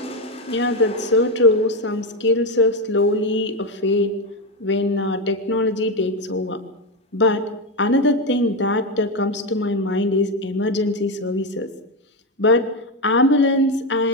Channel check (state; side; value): normal; both; correlation 0.10